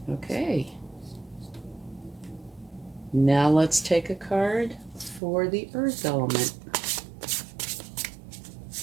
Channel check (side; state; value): left; drops out; at 5.2 s